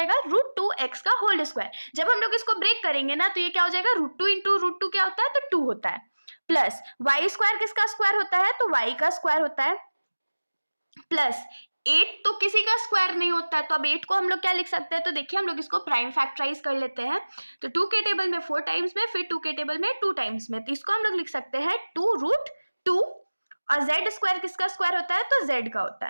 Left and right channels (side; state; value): both; inverted; correlation -1.00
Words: रूट 2x का होल स्क्वायर। जब हम लोग इसको ब्रेक करेंगे ना तो ये क्या हो जाएगा, रूट 2 इंटू रूट 2 क्या होता है, तो 2 होता है। प्लस y स्क्वायर किसका स्क्वायर होता है, तो y का स्क्वायर होता है, प्लस 8 तो किसी का स्क्वायर नहीं होता है, तो अब 8 को हम लोग क्या लिख सकते हैं, तो देखिए हम लोग इसको प्राइम फैक्टराइज कर लेते हैं। तो 2 के टेबल में 4 टाइम्स में, फिर 2 के टेबल में 2 टाइम्स में, तो इसको हम लोग लिख सकते हैं 2 रूट 2, और z स्क्वायर किसका स्क्वायर होता है, तो z का होता